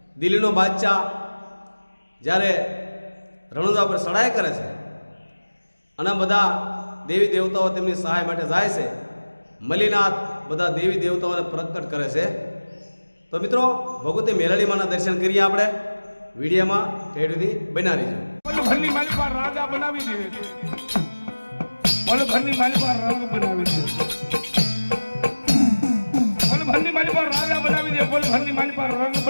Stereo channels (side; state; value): both; inverted; correlation -1.00